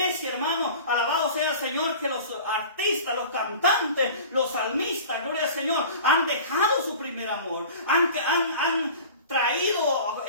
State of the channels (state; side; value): inverted; both; correlation -0.40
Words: hermano, alabado sea el Señor, que los artistas, los cantantes, los salmistas, gloria al Señor, han dejado su primer amor, han traído